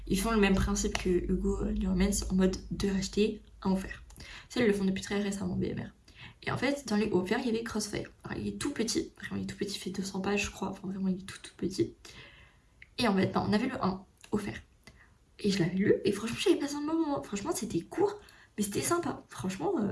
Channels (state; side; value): identical; both; correlation 1.00